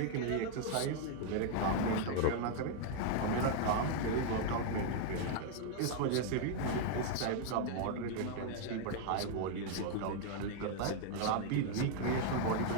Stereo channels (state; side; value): different; both; correlation 0.00